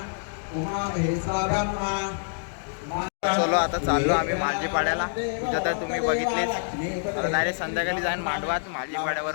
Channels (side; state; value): right; silent; digital silence